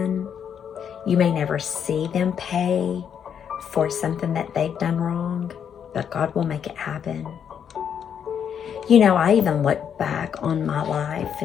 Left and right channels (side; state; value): right; quieter; 8.1 dB